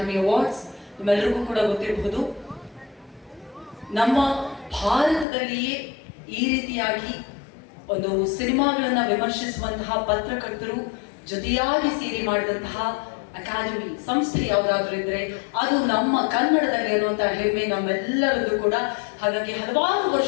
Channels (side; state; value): right; drops out; at 5.2 s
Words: awards. ನಿಮ್ಮೆಲ್ಲರಿಗೂ ಕೂಡ ಗೊತ್ತಿರಬಹುದು, ನಮ್ಮ ಭಾರತದಲ್ಲಿಯೇ ಈ ರೀತಿಯಾಗಿ ಒಂದು ಸಿನಿಮಾಗಳನ್ನ ವಿಮರ್ಶಿಸುವಂತಹ ಪತ್ರಕರ್ತರು ಜೊತೆಯಾಗಿ ಸೇರಿ ಮಾಡಿದಂತಹ ಅಕಾಡೆಮಿ ಸಂಸ್ಥೆ ಯಾವುದಾದ್ರೂ ಇದ್ರೆ ಅದು ನಮ್ಮ ಕನ್ನಡದಲ್ಲಿ ಅನ್ನುವಂತಹ ಹೆಮ್ಮೆ ನಮ್ಮೆಲ್ಲರದ್ದು ಕೂಡ. ಹಾಗಾಗಿ ಹಲವಾರು